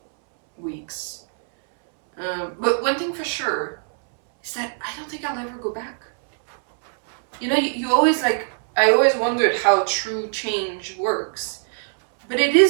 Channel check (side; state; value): left; silent; 64 dB below the other